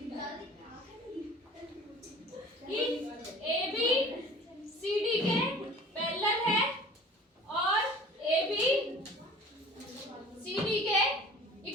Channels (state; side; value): normal; both; correlation 0.45